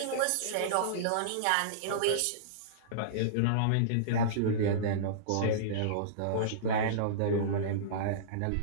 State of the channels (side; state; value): both; different; correlation -0.04